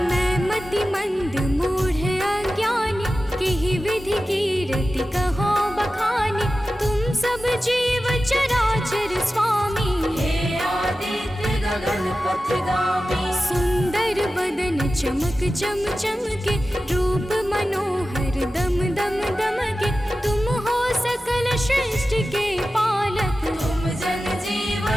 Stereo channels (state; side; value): normal; both; correlation 0.94